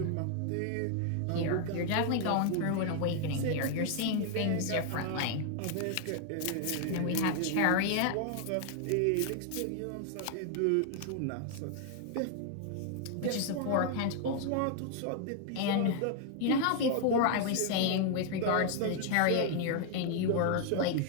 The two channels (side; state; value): both; different; correlation 0.00